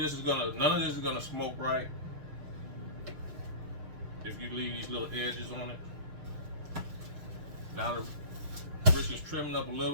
is gonna smoke right if you leave these little edges on it. Now the brisket's trimming up a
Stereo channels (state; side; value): late; left; 6.6 ms